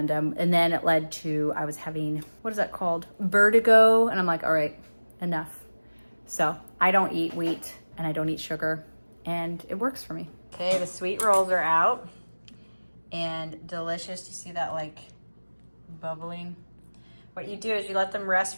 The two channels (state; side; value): inverted; both; correlation -1.00